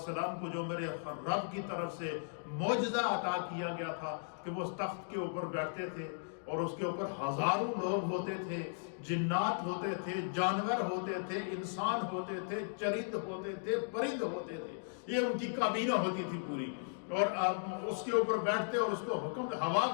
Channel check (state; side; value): silent; right; digital silence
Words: کو جو میرے رب کی طرف سے معجزہ عطا کیا گیا تھا کہ وہ اس تخت کے اوپر بیٹھتے تھے اور اس کے اوپر ہزاروں لوگ ہوتے تھے، جنات ہوتے تھے، جانور ہوتے تھے، انسان ہوتے تھے، چرند ہوتے تھے، پرند ہوتے تھے. یہ ان کی کابینہ ہوتی تھی پوری. اور اس کے اوپر بیٹھتے اور اس کو ہوا